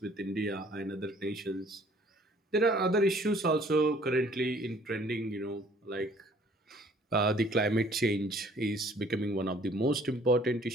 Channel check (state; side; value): normal; both; correlation 0.57